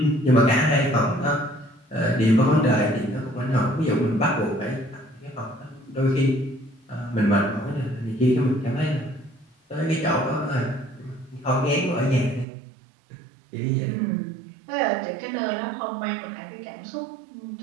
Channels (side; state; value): left; drops out; at 12.5 s